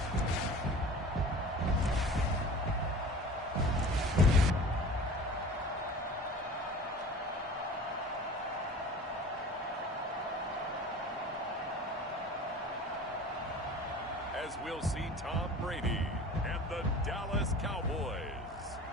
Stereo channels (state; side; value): normal; both; correlation 0.40